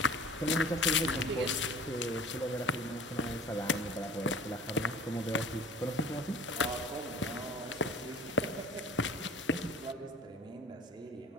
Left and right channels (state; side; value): normal; both; correlation 0.43